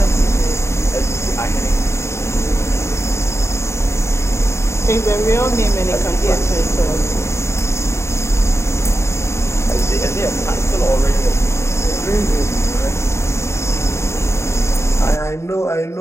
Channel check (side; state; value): right; late; 0.13 ms